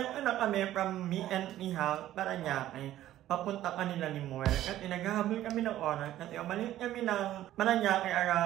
ko na kami from me and House para niya papunta kanila ni Moel. Kasi naghahabol kami ng oras kasi umalis kami ng Paranaque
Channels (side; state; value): left; quieter; 13.4 dB